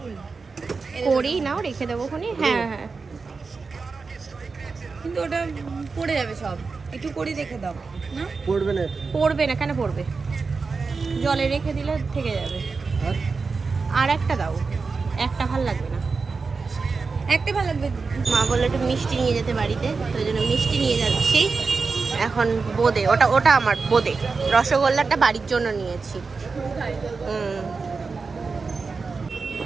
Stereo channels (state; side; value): quieter; left; 4.5 dB